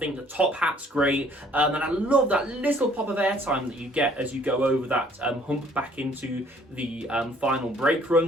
the top hat's great. And I love that little pop of airtime that you get as you go over that hump back into the final break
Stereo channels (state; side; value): normal; both; correlation 0.59